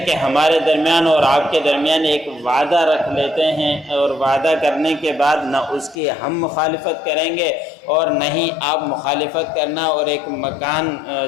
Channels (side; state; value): right; drops out; at 6.0 s